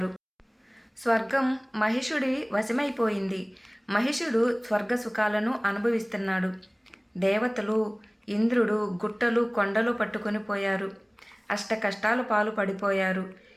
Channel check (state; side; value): identical; both; correlation 1.00